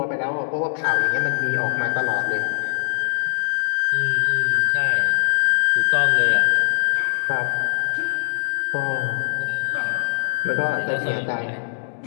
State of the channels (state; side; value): silent; right; digital silence